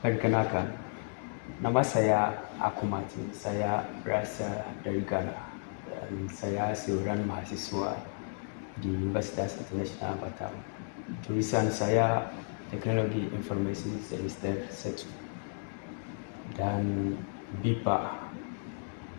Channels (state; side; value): silent; right; digital silence